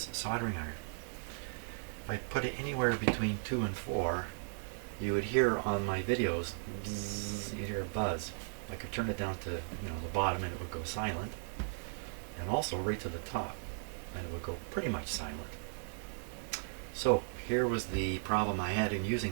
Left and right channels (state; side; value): silent; left; digital silence